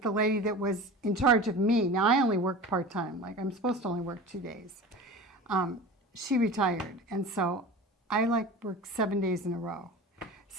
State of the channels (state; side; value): normal; both; correlation 0.34